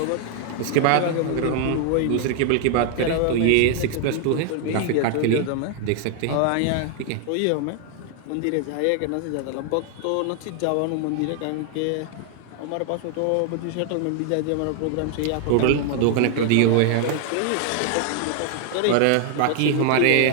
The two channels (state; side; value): different; both; correlation 0.00